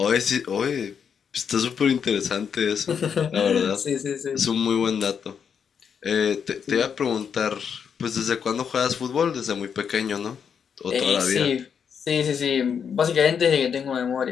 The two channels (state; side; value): quieter; right; 7.2 dB